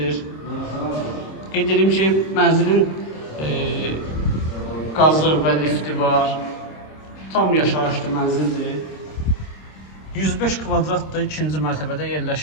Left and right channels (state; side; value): late; right; 26 ms